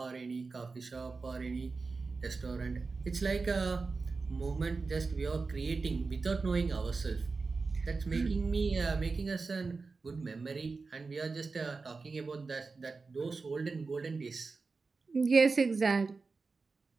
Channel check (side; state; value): left; quieter; 4.2 dB